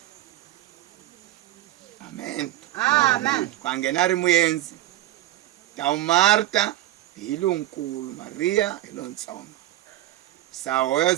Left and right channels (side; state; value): left; quieter; 14.7 dB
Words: Amen. Amen. Kwa nghena a ri muyenzi. Ta Marta hi lonkulu, Maria hi lontsongo. Sa